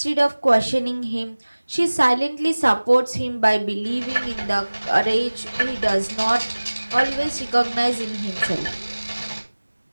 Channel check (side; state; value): both; inverted; correlation -1.00